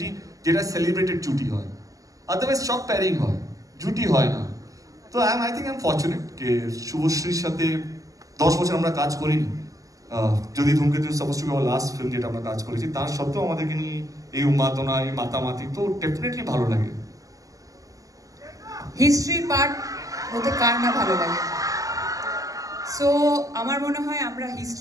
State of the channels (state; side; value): late; left; 0.17 ms